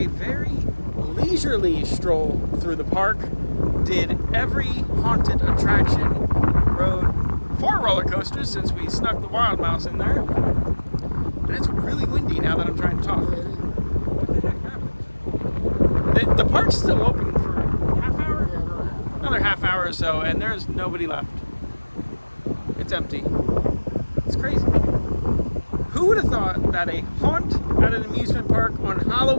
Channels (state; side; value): inverted; both; correlation -1.00